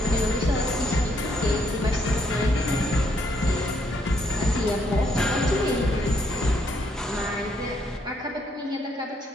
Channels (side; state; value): both; normal; correlation 0.73